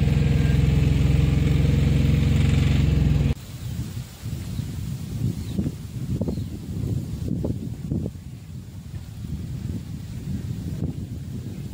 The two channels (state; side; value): identical; both; correlation 1.00